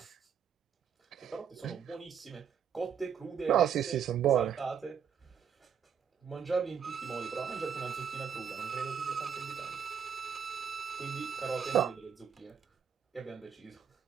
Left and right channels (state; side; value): quieter; left; 7.7 dB